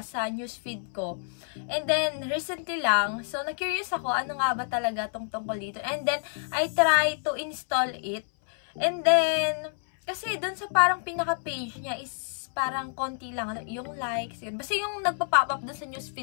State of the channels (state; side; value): silent; right; 59 dB below the other